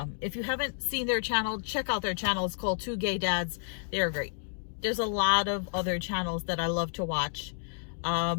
If you haven't seen their channel, check out their channel. It's called Two Gay Dads. They are great. There's a lot of other channels that I love to watch.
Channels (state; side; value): silent; right; digital silence